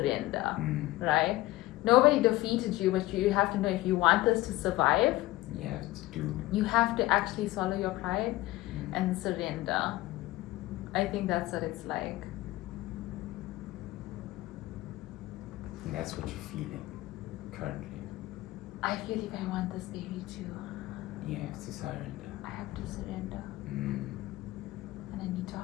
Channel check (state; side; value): quieter; right; 18.1 dB